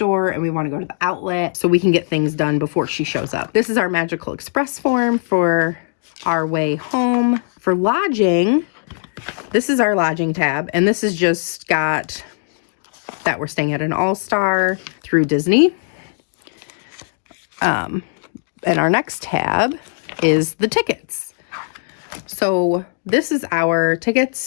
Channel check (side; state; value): right; silent; digital silence